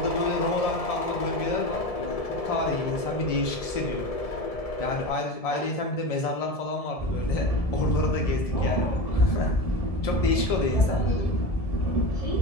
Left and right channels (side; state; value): right; late; 1.7 ms